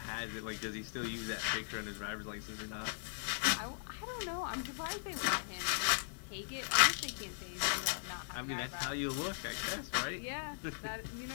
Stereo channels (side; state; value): right; silent; digital silence